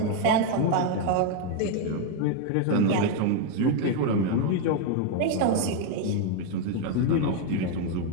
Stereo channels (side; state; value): both; different; correlation 0.01